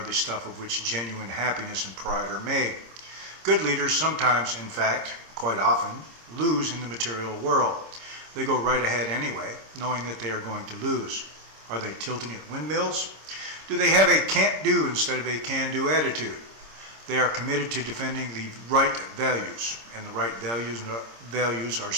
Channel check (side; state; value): left; late; 26 ms